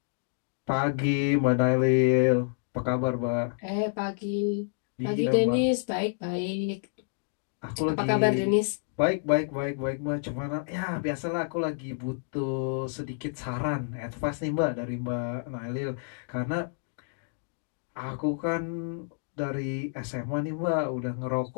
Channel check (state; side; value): silent; right; digital silence